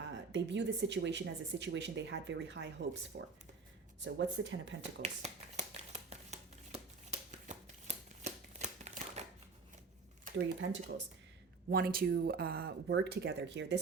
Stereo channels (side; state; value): left; quieter; 4.6 dB